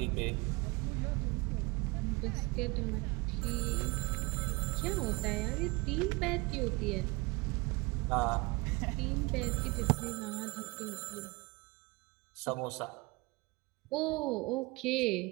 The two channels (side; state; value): left; quieter; 25.4 dB